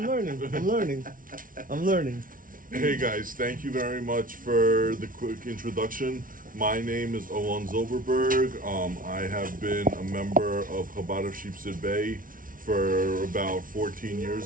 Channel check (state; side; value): late; left; 0.39 ms